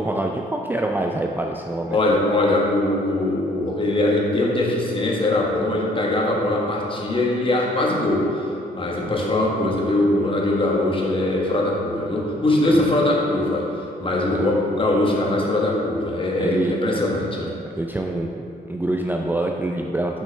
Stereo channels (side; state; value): both; normal; correlation 0.62